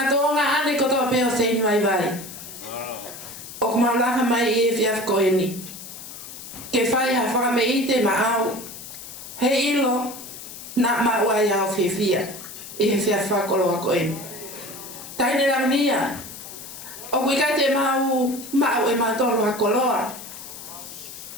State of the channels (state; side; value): noise; left; hiss, 13 dB below the sound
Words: ane kotoa peo sein vai vai. O ka maulaka mai i e whiaf koeni. Ke whai ha whakame i te Makaoo, he ilo, na mauai au whiwhia, i he whiaf whakoloa koeni. Taine Lavinia, o kuika te mau e matolo hakoloa,